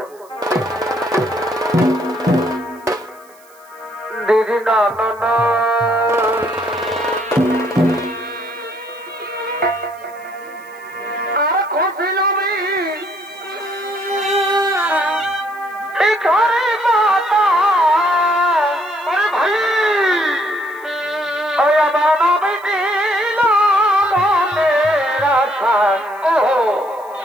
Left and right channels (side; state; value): right; noise; hiss, 28 dB below the sound